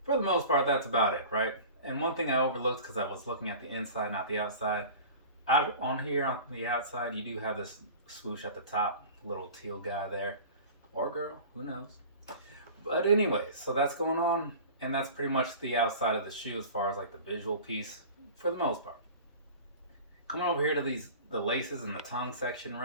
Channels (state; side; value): inverted; both; correlation -0.39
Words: for the most part, that's about it, right? And one thing I overlooked because I was looking at the inside, not the outside. Out on here on the outside, you do have this swoosh at the top, little teal guy there, or girl, who knows? But anyways, so that's going on, and that's pretty much the outside of the shoe as far as like the visual piece for the most part. Coming over here to the laces and the tongue section,